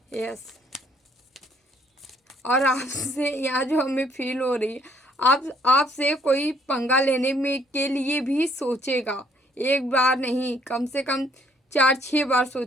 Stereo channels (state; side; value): normal; both; correlation 0.65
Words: यस। और आपसे यहाँ जो हमें फील हो रही है, आपसे कोई पंगा लेने में के लिए भी सोचेगा, एक बार नहीं, कम से कम 4-6 बार